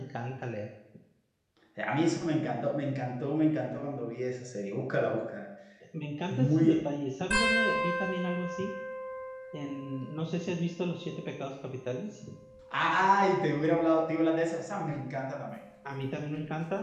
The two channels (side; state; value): both; identical; correlation 1.00